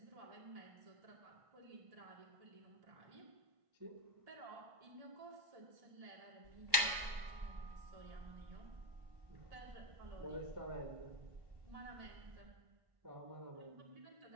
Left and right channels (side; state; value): left; late; 1.5 ms